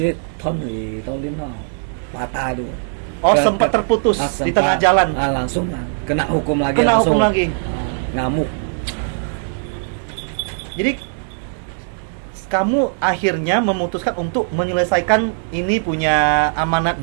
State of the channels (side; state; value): left; silent; 66 dB below the other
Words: Tony patah tuh. Sempat terputus di tengah jalan. Langsung kena hukum lagi. Ngamuk. Jadi kamu akhirnya memutuskan untuk menyelesaikan ini punya amanat